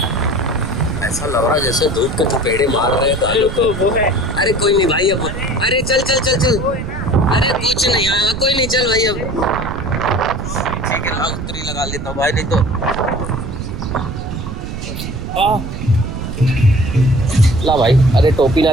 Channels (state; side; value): noise; right; rumble, 7 dB below the sound